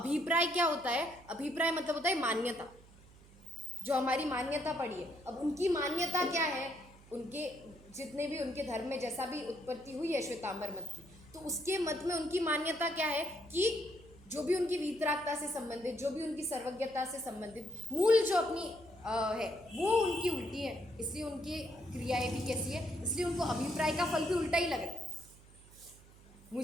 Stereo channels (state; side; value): noise; right; hum, 23 dB below the sound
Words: क्या होता है? अभिप्राय मतलब होता है मान्यता, जो हमारी मान्यता पड़ी है। अब उनकी मान्यता क्या है? उनके जितने भी उनके धर्म में जैसा भी उत्पत्ति हुई है श्वेतांबर मत की, तो उसके मत में उनकी मान्यता क्या है कि जो भी उनकी वीतरागता से संबंधित, जो भी उनकी सर्वज्ञता से संबंधित मूल जो अपनी है वो उनकी उल्टी है, इसलिए उनकी क्रियाएं भी कैसी है, इसलिए उनको अभिप्राय का फल भी उल्टा ही लग रहा है।